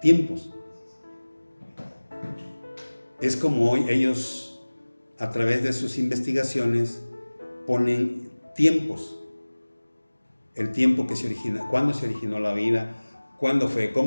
tiempos. Es como hoy ellos, a través de sus investigaciones, ponen tiempos. El tiempo que se origina, cuándo se originó la vida, cuándo fue,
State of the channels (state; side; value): inverted; both; correlation -1.00